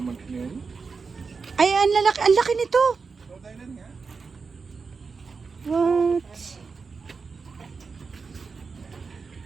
Ay, ang laki nito. What?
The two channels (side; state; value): left; quieter; 4.9 dB